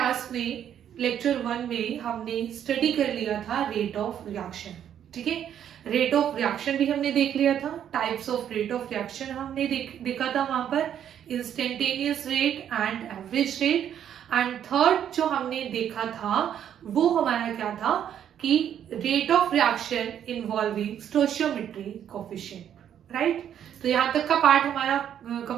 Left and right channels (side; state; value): left; quieter; 9.7 dB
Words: में लेक्चर 1 में हमने स्टडी कर लिया था रेट ऑफ रिएक्शन। ठीक है, रेट ऑफ रिएक्शन भी हमने देख लिया था, types of rate of reaction हमने देखा था वहां पर, instantaneous rate and average rate. And third जो हमने देखा था वो हमारा क्या था कि rate of reaction involving stoichiometry coefficient. Right, तो यहाँ तक का पार्ट हमारा